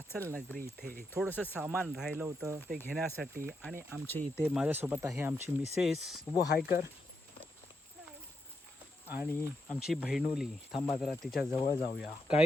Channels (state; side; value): normal; both; correlation 0.83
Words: नगरी इथे. थोडंसं सामान राहिलं होतं ते घेण्यासाठी आणि आमच्या इथे माझ्यासोबत आहे आमची मिसेस. उभो हाय कर. आणि आमची बहिणुली. थांबा जरा तिच्या जवळ जाऊया.